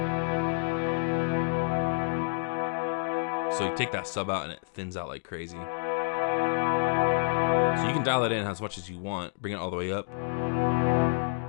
So you take that sub out and it thins out like crazy. So you can dial it in as much as you want, bring it all the way up.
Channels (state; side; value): silent; right; digital silence